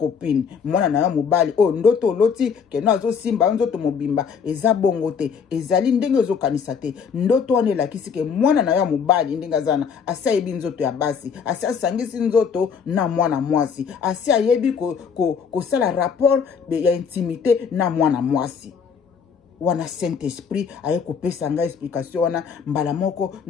mwana na mobali o ndoto loti keno azo simba nzoto mobimba eza bongo te ezali ndenge ozo kanisa te ndoto wana elakisi ke mwana na mobali ndenga zana asaibi nzoto ya basi asangisi nzoto na mwana mwasi ayebi kosala rapport ya intimité na mwana mwasi wana Saint Esprit aye kopesa nga explication wana mbala moko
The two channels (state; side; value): quieter; right; 6.5 dB